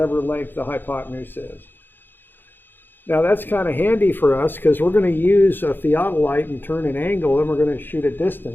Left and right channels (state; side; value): late; right; 0.097 ms